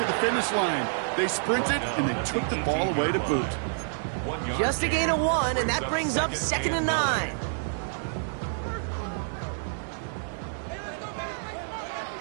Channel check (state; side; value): silent; left; 59 dB below the other